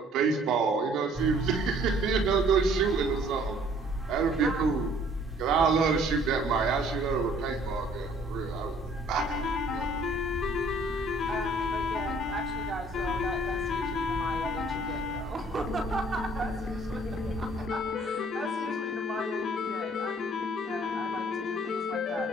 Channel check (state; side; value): normal; both; correlation 0.57